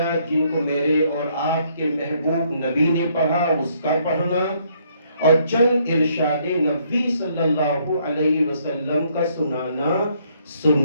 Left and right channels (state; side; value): inverted; both; correlation -0.68